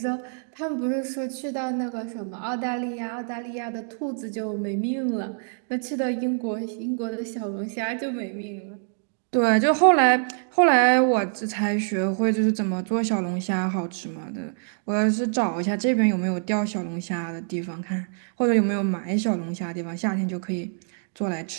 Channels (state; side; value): silent; left; digital silence